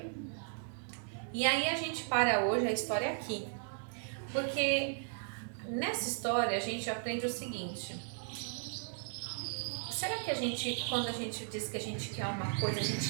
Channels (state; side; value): silent; left; digital silence